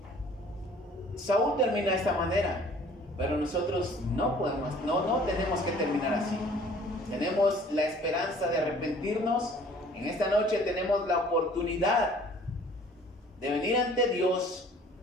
Saúl termina de esta manera, pero nosotros no tenemos que terminar así. Tenemos la esperanza de arrepentirnos. En esta noche tenemos la oportunidad de venir ante Dios.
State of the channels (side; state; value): both; normal; correlation 0.53